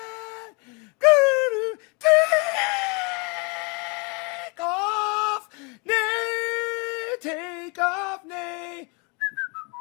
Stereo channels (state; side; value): quieter; right; 31.7 dB